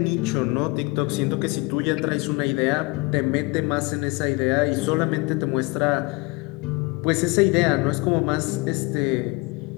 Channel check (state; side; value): quieter; right; 25.6 dB